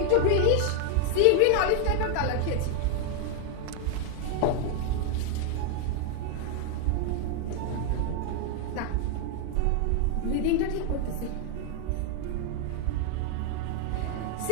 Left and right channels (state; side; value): different; both; correlation 0.00